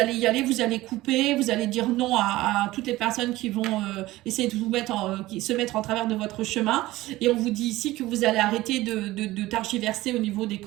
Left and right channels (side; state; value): left; quieter; 17.6 dB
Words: y aller, vous allez couper, vous allez dire non à toutes les personnes qui vont essayer de vous qui se mettre en travers de votre chemin. Et on vous dit ici que vous allez arrêter de targiverser au niveau des